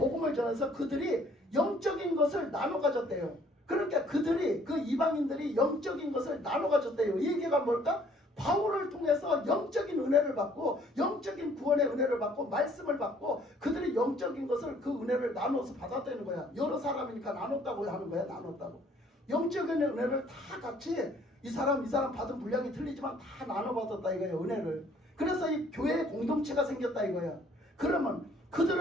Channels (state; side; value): normal; both; correlation 0.60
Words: 전해서 그들이 영적인 것을 나눠 가졌대요. 그러니까 그 이방인들이 영적인 것을 나눠 가졌대요. 이 얘기가 뭘까? 바울을 통해서 영적인 은혜를 받고 영적인 구원의 은혜를 받고 말씀을 받고 그들이 영적인 것을 그 은혜를 나눠서 받았다는 거야. 여러 사람이니까 나눴다고 하는 거야. 나눴다고. 영적인 은혜를 다 같이 이 사람 받은 분량이 틀리지만 다 나눠 받았다 이거야. 은혜를. 그래서 이 교회의 공동체가 생겼다 이거야. 그러면